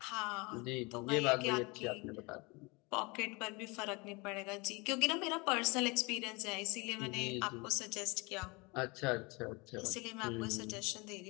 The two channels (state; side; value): quieter; right; 27.0 dB